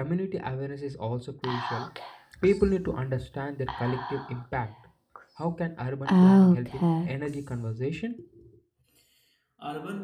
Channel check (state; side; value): identical; both; correlation 1.00